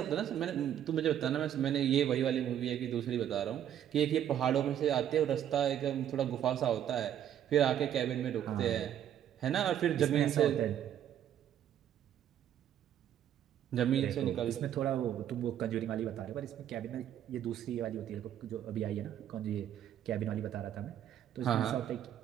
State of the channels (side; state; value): left; quieter; 10.4 dB